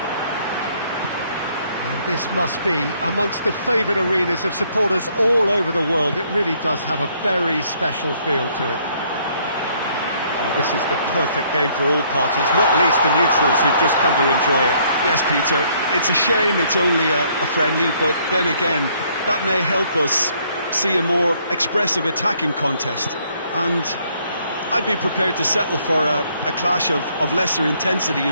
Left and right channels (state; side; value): inverted; both; correlation -0.66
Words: And this must be amongst the favoured arenas of supporters all over the world. It really does have a very special feel to it. Well, this is the perfect game for all parties, not least the neutrals who've just come to enjoy it. Yes, Peter, it's a shame it's only a friendly, but then again, that may help us see a more expressive attacking contest. And I'd be prepared to settle for a clash of lesser intensity